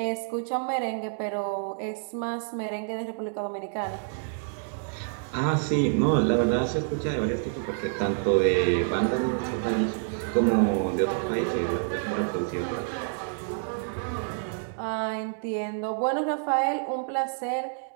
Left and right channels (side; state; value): left; silent; digital silence